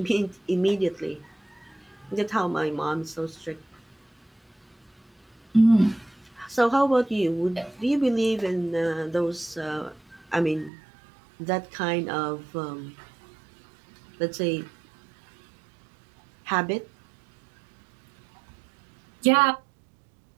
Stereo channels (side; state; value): left; drops out; at 10.7 s